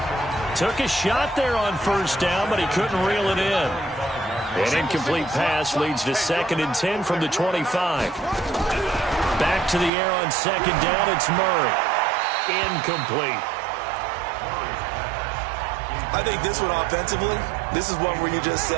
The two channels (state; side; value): drops out; left; at 9.9 s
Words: Took a shot there on 1st down, but he couldn't reel it in. An incomplete pass leads to 2nd and 10 from the 25. Back to the air on 2nd down. It's Murray. Incomplete. I think this one offensively, this is one where you just